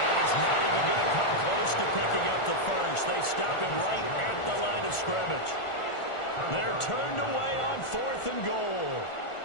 he's not even going to come close to picking up the 1st. They stop him right at the line of scrimmage. They're turned away on 4th and goal.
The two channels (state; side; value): late; right; 1.4 ms